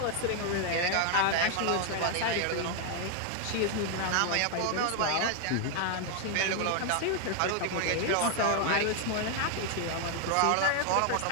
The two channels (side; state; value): both; different; correlation 0.01